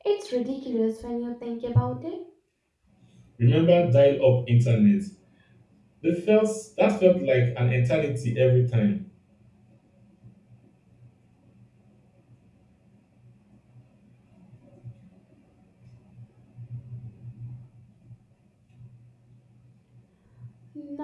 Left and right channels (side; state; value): both; identical; correlation 1.00